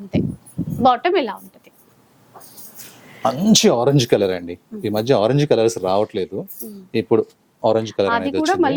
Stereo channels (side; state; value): both; identical; correlation 1.00